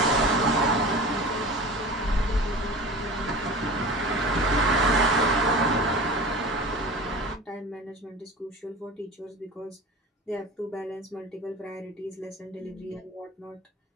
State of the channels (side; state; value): both; normal; correlation 0.36